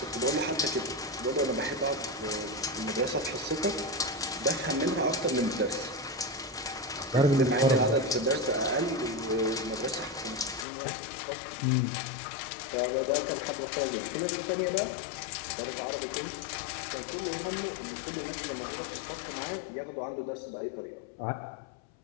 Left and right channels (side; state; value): right; drops out; at 10.7 s